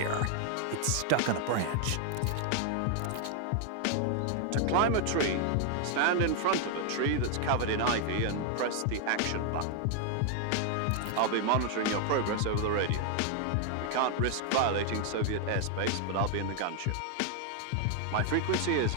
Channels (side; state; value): both; different; correlation 0.00